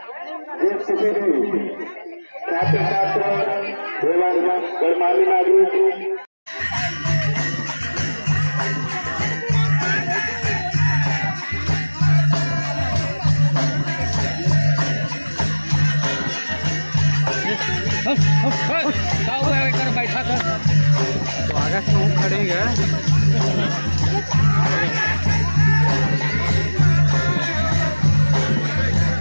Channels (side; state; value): both; inverted; correlation -1.00